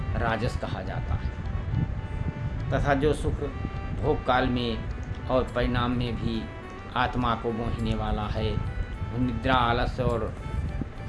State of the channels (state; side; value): identical; both; correlation 1.00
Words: राजस कहा जाता है। तथा जो सुख भोग काल में और परिणाम में भी आत्मा को मोहने वाला है, वह निद्रा, आलस्य और